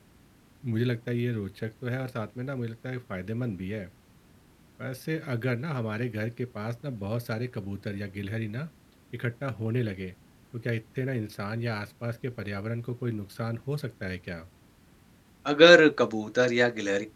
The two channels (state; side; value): identical; both; correlation 1.00